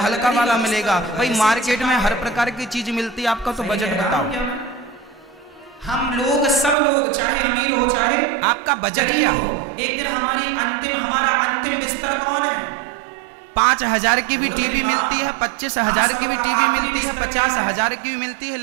वाला मिलेगा। भाई मार्केट में हर प्रकार की चीज मिलती है, आपका तो बजट बताओ। हम लोग, सब लोग, चाहे अमीर हो चाहे आपका बजट क्या हो? एक दिन हमारा अंतिम बिस्तर कौन है? 5,000 की भी टीवी मिलती है, 25,000 की भी टीवी मिलती है, 50,000 की भी मिलती है,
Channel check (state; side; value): drops out; left; at 6.8 s